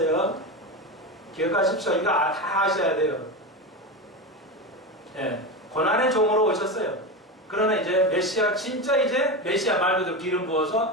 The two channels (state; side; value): normal; both; correlation 0.20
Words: 기억하십시오. 이거 다 아셔야 돼요. 네. 고난의 종으로 오셨어요. 그러나 이제 메시아, 진짜 이제 메시아 말 그대로 기름